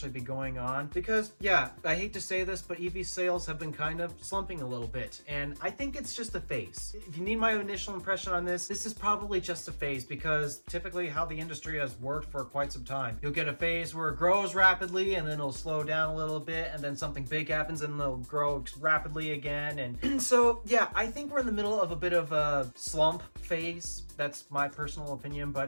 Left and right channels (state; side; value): inverted; both; correlation -1.00